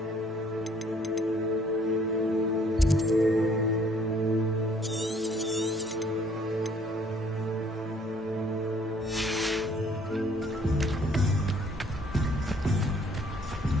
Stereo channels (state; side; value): normal; both; correlation 0.61